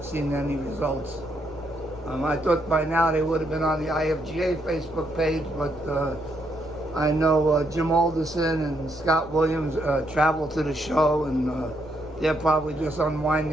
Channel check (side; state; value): left; noise; rumble, 21 dB below the sound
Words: seen any results. I thought by now they would have been on the IFGA Facebook page, but I know Jim Alderson and Scott Williams traveled to the show, and they're probably just